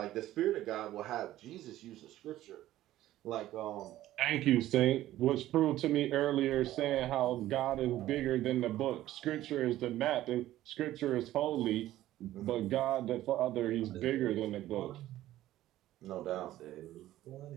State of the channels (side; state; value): left; quieter; 14.4 dB